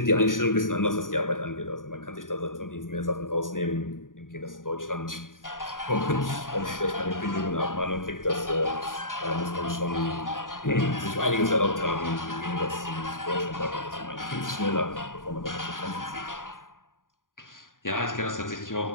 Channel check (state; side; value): late; right; 0.89 ms